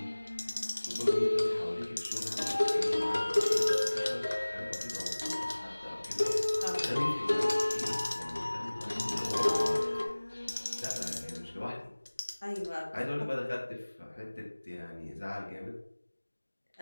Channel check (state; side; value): inverted; both; correlation -1.00